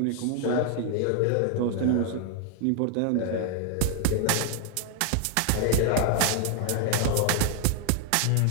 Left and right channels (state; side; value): different; both; correlation 0.00